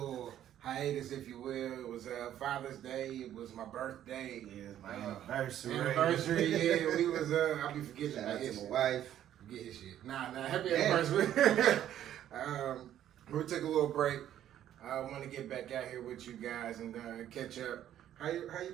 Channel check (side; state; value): left; quieter; 11.3 dB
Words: hiatus, if you will. It was Father's Day. It was my birthday. Yeah, it's my anniversary. Yeah, we was. I'll be forgetting Shout about out his to shit. my wife. Forget his shit. Nah, happy anniversary. We took a little break. I want to get back out here with you guys and catch up. How you